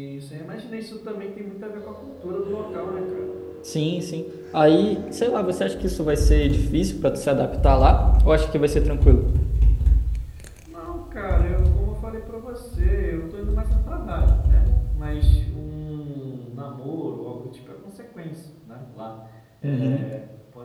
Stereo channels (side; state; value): both; identical; correlation 1.00